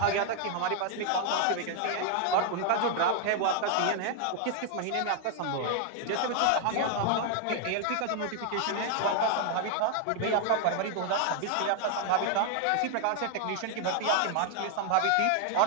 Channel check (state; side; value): different; both; correlation 0.00